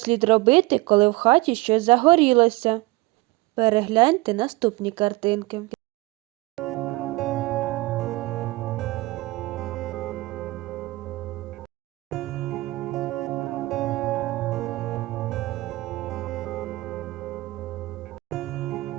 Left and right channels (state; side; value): quieter; left; 21.0 dB